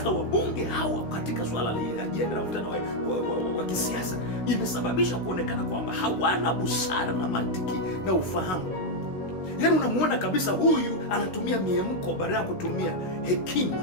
wabunge hawa katika swala la ajenda la mvutano wa kisiasa imesababisha kuonekana kwamba hawana busara na mantiki na ufahamu. Yaani unamuona kabisa huyu anatumia miemko badala ya kutumia hekima,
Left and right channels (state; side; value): late; right; 16 ms